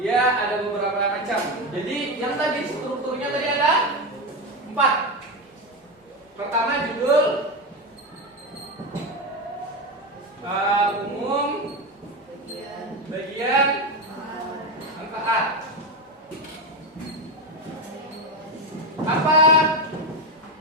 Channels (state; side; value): normal; both; correlation 0.14